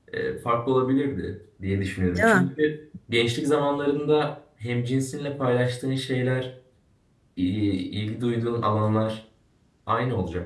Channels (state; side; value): identical; both; correlation 1.00